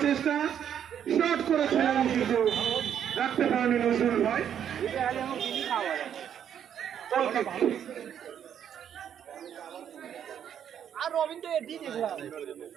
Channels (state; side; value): quieter; left; 9.1 dB